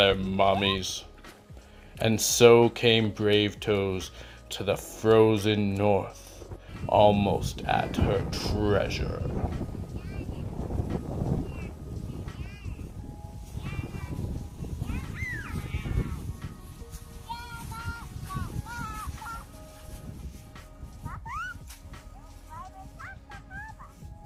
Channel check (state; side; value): identical; both; correlation 1.00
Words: mommies. And so came Bravetoes to the frozen north, almost at her treasure.